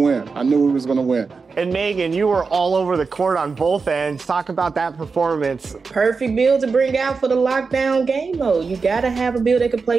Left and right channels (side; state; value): left; quieter; 4.7 dB